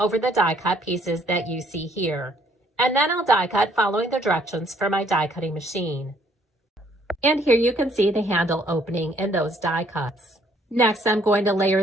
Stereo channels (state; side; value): normal; both; correlation 0.64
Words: the die cut pieces that you see here. And then I'll die cut following the directions for my die cutting machine. And here you can see the handle opening in those die cuts. Next, I'm going to